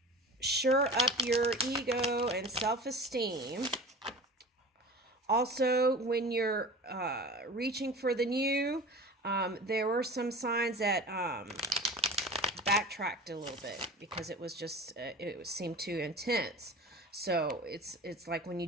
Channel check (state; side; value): normal; both; correlation 0.37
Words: shore up your ego and self-esteem. Also, when you're reaching for the new, there were some signs that backtracked a little bit because it was just, it seemed too intense. So it's like when you